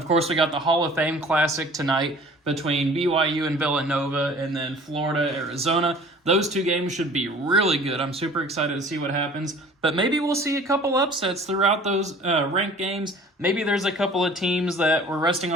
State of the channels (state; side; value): normal; both; correlation 0.48